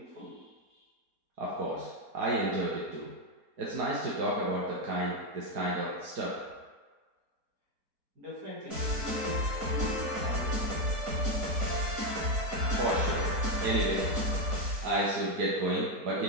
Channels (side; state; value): left; late; 4.3 ms